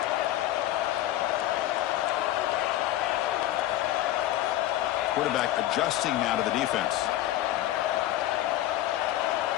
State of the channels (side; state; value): right; quieter; 13.9 dB